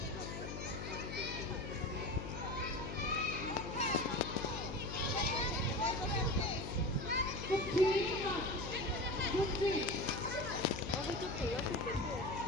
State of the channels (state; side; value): noise; left; hum, 7 dB below the sound